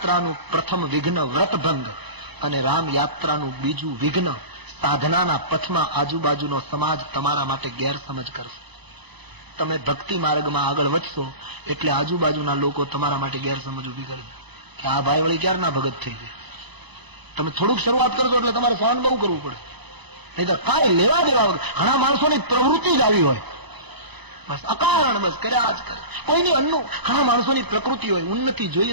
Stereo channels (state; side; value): late; left; 1.0 ms